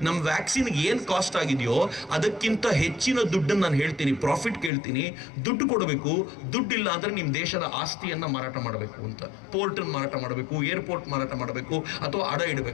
ನಮ್ಮ ವ್ಯಾಕ್ಸಿನ್ಗೆ ಏನು ಕಾಸ್ಟ್ ಆಗಿದೆಯೋ ಅದಕ್ಕಿಂತ ಹೆಚ್ಚಿನ ದುಡ್ಡನ್ನು ನಾನು ಹೇಳ್ತೀನಿ, ಪ್ರಾಫಿಟ್ ಕೇಳ್ತೀನಿ, ದುಡ್ಡು ಕೊಡಬೇಕು. ದುಡ್ಡಿಲ್ಲ ಅಂದ್ರೆ ನಿಮ್ಮ ದೇಶದ ಆಸ್ತಿಯನ್ನ ಮಾರಾಟ ಮಾಡಬೇಕು ಅಂತ, ಪೋರ್ಟನ್ನು ಮಾರಾಟ ಮಾಡಬೇಕು, ಏರ್ಪೋರ್ಟ್ ಮಾರಾಟ ಮಾಡಬೇಕು, ಅಥವಾ ಅಡ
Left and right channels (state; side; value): drops out; right; at 4.7 s